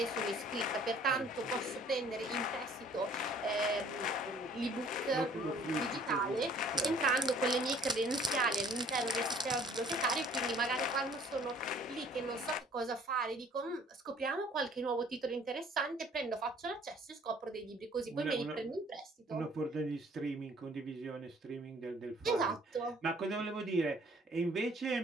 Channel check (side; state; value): both; normal; correlation 0.56